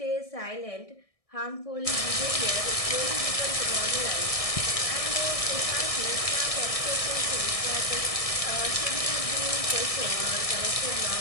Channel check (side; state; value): right; late; 1.6 ms